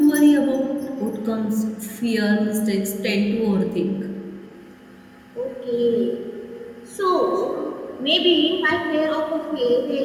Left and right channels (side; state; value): both; identical; correlation 1.00